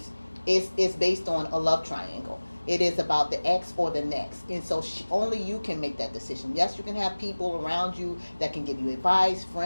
it's based on a love triangle. It is about the ex or the next. And so only you can make that decision. Yes, you can have people around you that can give you advice,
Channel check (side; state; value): both; inverted; correlation -1.00